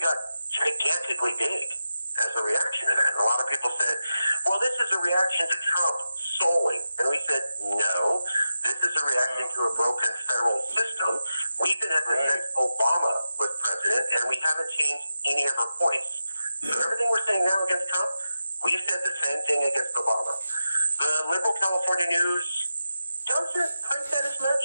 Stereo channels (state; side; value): inverted; both; correlation -0.91